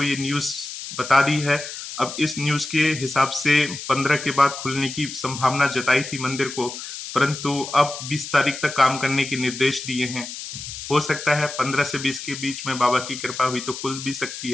ये न्यूज बता दी है। अब इस न्यूज के हिसाब से 15 के बाद खुलने की संभावना जताई थी मंदिर को, परंतु अब 20 तारीख तक काम करने के निर्देश दिए हैं। हो सकता है 15 से 20 के बीच में बाबा की कृपा हुई तो खुल भी सकती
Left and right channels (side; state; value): left; noise; hiss, 9 dB below the sound